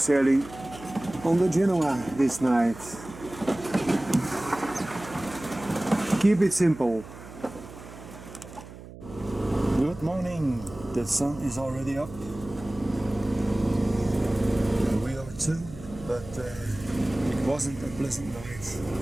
on the Genoa this night. Keep it simple. Good morning. The sun is already up. We are too, but it wasn't a pleasant night.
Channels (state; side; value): noise; right; hum, 16 dB below the sound